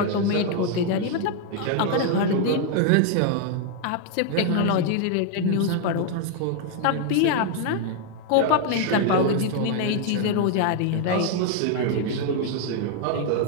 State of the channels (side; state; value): both; different; correlation 0.00